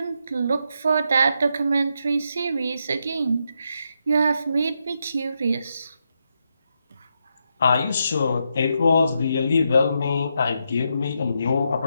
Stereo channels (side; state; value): both; inverted; correlation -0.82